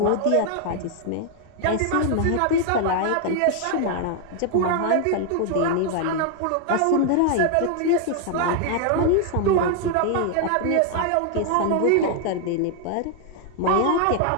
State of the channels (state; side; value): different; both; correlation 0.00